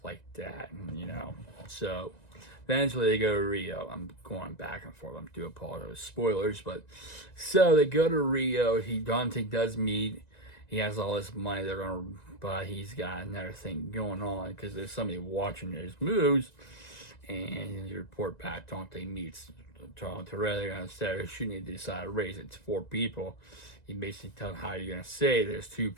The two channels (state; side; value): late; right; 1.9 ms